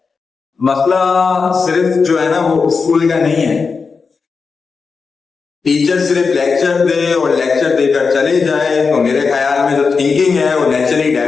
मसला सिर्फ जो है ना वो स्कूल का नहीं है। टीचर सिर्फ लेक्चर दे और लेक्चर देकर चले जाए तो मेरे ख्याल में जो थिंकिंग है वो नेचुरली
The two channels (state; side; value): quieter; right; 5.0 dB